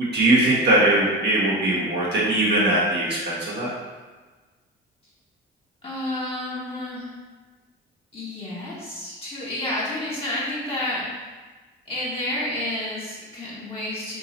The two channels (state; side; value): normal; both; correlation 0.21